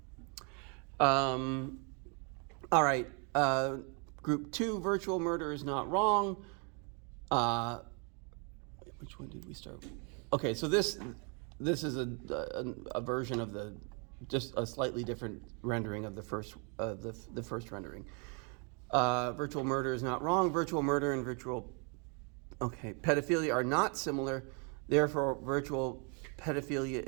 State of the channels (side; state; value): left; quieter; 36.5 dB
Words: All right. Group 2, virtual murder is not wrong. Which one did we start with? Okay, so this is a version of just a slightly different rendering of the first rendering. Virtual murder is not wrong. Virtual murder and pedophilia are not similar. Therefore, virtual pedophilia